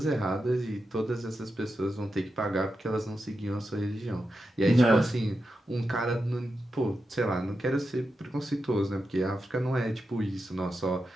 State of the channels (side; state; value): both; normal; correlation 0.88